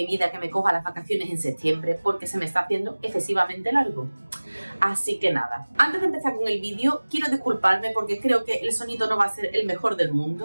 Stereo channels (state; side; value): inverted; both; correlation -1.00